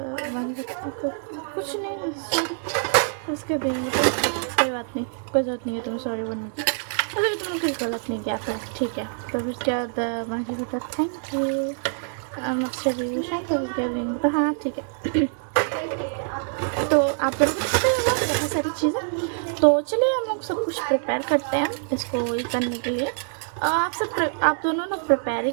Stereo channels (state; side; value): silent; left; digital silence